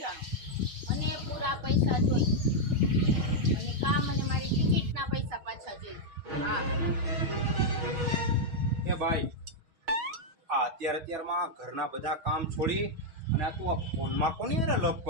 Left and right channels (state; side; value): late; left; 6.3 ms